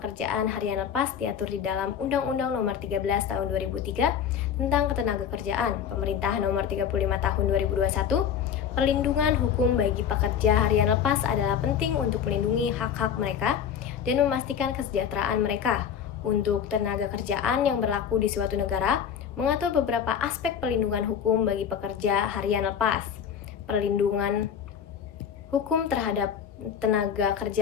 harian lepas diatur di dalam Undang-Undang Nomor 13 Tahun 2003 tentang Ketenagakerjaan, Pemerintah Nomor 35 Tahun 2021. Perlindungan hukum bagi pekerja harian lepas adalah penting untuk melindungi hak-hak mereka dan memastikan kesejahteraan mereka. Untuk tenaga kerjaan yang berlaku di suatu negara, mengatur beberapa aspek perlindungan hukum bagi pekerja harian lepas. Perlindungan hukum terhadap tenaga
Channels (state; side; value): quieter; right; 8.1 dB